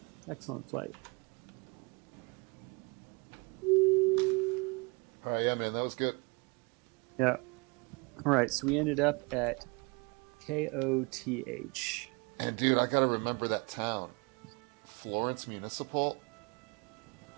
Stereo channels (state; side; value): quieter; left; 29.2 dB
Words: Excellent flight. All right, yeah, man, that was good. Yeah. All right. So we ended up at KOTH. And dude, I gotta remember that town, Florence Municipal.